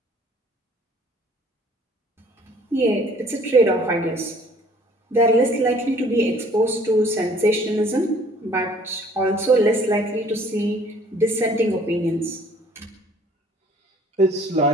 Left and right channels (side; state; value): both; normal; correlation 0.56